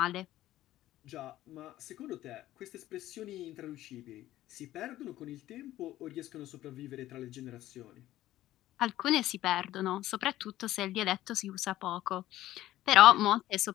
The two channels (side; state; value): right; quieter; 14.6 dB